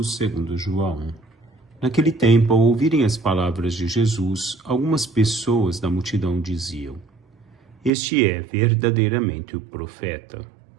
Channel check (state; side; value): drops out; left; at 7.9 s